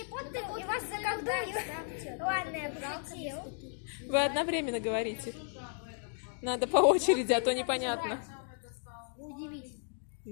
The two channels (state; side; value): silent; right; 55 dB below the other